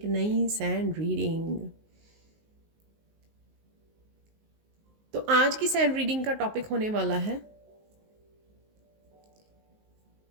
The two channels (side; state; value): left; late; 19 ms